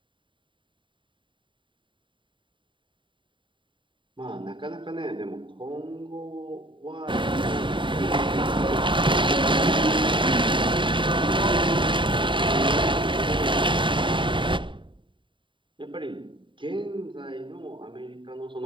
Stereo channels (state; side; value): late; left; 0.24 ms